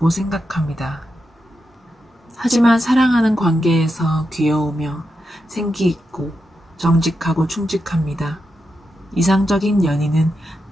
생각합니다. 하지만 사랑하는 관계에서 귀여우며 생기 있고 정직하고 충직합니다. 이상적인 연인은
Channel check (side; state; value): both; normal; correlation 0.87